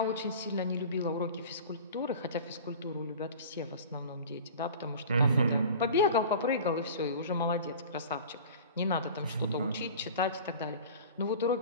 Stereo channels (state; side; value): inverted; both; correlation -0.39